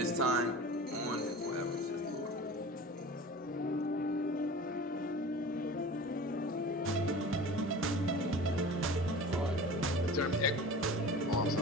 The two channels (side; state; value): both; normal; correlation 0.38